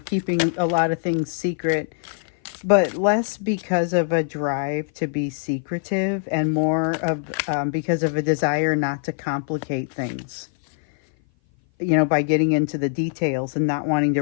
keeping a lot of things secret. but less because of a drive to be secretive and more of because of a desire not to complicate things, by getting into the details and not wanting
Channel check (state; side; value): silent; right; 57 dB below the other